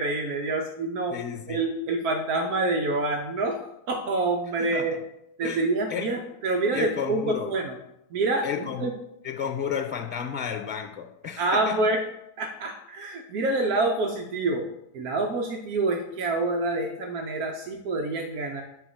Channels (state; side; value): late; left; 4.4 ms